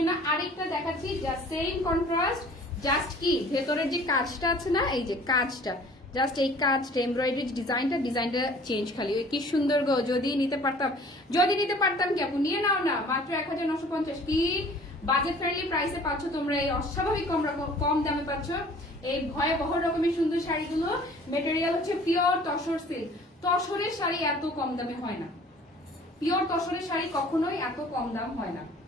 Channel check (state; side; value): normal; both; correlation 0.50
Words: আরেকটা দেখাচ্ছি, জাস্ট সেম কন্ট্রাস্ট, জাস্ট কি ভেতরের যে কাজটা আছে না, এই যে কাজটা, জাস্ট এই কাজটা এমব্রয়ডারি ডিজাইনটা চেঞ্জ, খালি কি সুন্দর গো। যদি নিতে পারতাম কি আপু, নিয়ে নাও না, মাত্র 1950। কি বাজেট ফ্রেন্ডলি প্রাইসে পাচ্ছ তোমরা, এই অস্বাভাবিক কম দামে পাচ্ছ এই ভয়াবহ রকমের সুন্দর শাড়িগুলো। মেটেরিয়াল হচ্ছে পিওর তসর সিল্ক, তসরের শাড়ি এত কম দামে হয় না, পিওর তসরের শাড়ি কখনোই এত কম দাম হয় না।